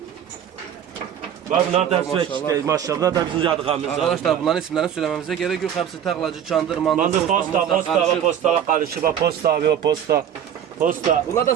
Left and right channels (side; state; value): left; quieter; 9.3 dB